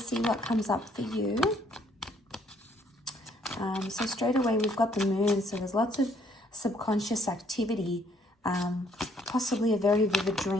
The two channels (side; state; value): both; normal; correlation 0.66